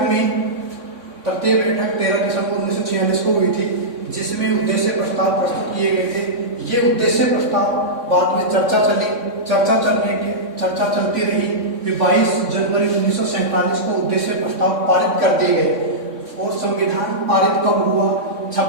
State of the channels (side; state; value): left; late; 3.6 ms